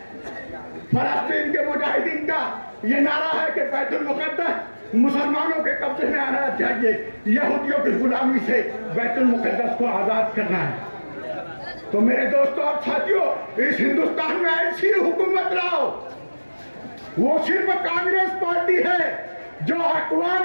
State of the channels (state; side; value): inverted; both; correlation -1.00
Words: फलस्तीन के मुजाहिदीन का ये नारा है कि बैतुल मुक़द्दस मुसलमानों के कब्जे में आना चाहिए, यहूदियों की गुलामी से बैतुल मुक़द्दस को आजाद करना है। तो मेरे दोस्तों और साथियों, इस हिंदुस्तान में ऐसी हुकूमत लाओ, वो सिर्फ कांग्रेस पार्टी है जो